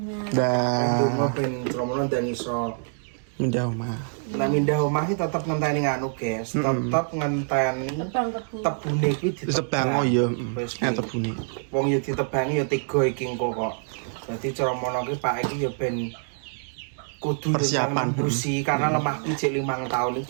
Dah. Ndonga ben tromono ndang iso Pindah omah. Nah mindah omah iki tetep ngenteni nganu guys, tetep ngenteni Tebang tebu. tebune iki Tebang oh iya, Wis, ya tebune. wong yo ditebangi yo 3 iki engko kok. Dadi cara mono iki Pak iki yo ben kudu Persiapan. nembusi karena lemahku jek 5 tahun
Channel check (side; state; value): left; silent; digital silence